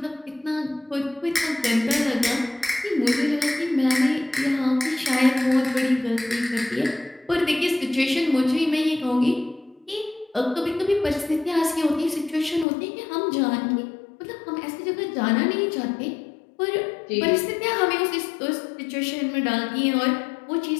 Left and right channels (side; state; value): right; drops out; at 12.7 s